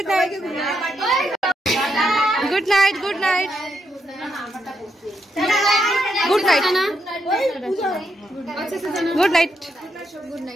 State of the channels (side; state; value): both; normal; correlation 0.80